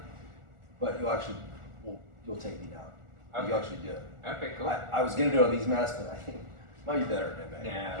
but you'll take me down. Okay. You'll actually do it. Okay, cool. I was gonna do it on these masks, but I think it might be better at MA.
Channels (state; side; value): late; left; 1.4 ms